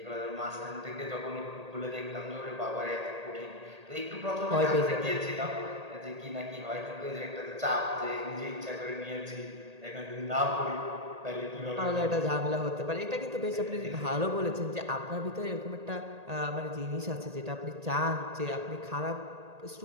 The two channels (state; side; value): late; left; 1.8 ms